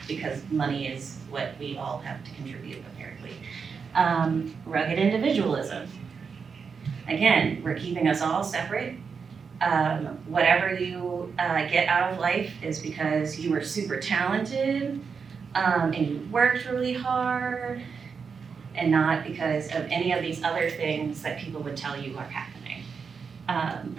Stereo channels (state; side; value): quieter; left; 5.7 dB